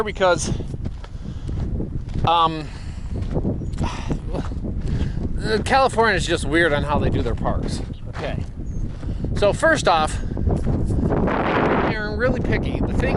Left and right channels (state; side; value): identical; both; correlation 1.00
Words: because California is just weird on how they do their parks. Okay. So first off, they're really picky. The